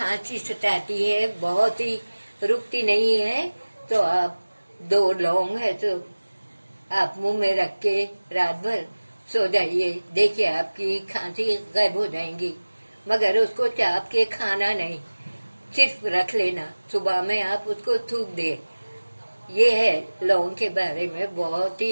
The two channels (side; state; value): both; inverted; correlation -1.00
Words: सताती है, बहुत ही रुकती नहीं है, तो आप 2 लौंग है तो आप मुंह में रख के रात भर सो जाइए, देखिए आपकी खांसी गायब हो जाएंगी। मगर उसको चाप के खाना नहीं, सिर्फ रख लेना, सुबह में आप उसको थूक दे। ये है लौंग के बारे में, बहुत